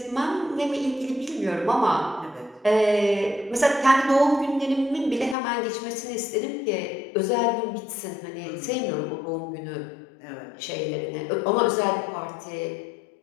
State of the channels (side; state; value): right; drops out; at 5.4 s